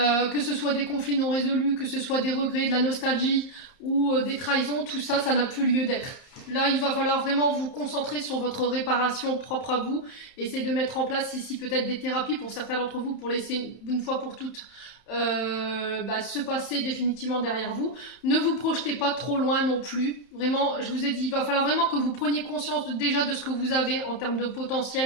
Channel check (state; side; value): late; right; 31 ms